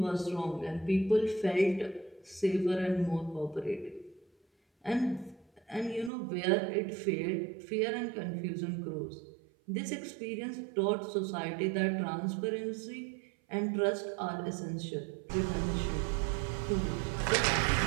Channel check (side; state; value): left; drops out; at 6.1 s